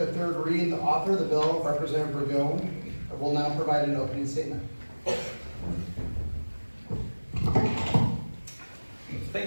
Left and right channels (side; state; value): both; inverted; correlation -1.00